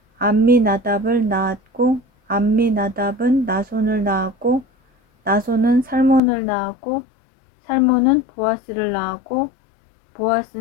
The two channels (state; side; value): drops out; right; at 6.2 s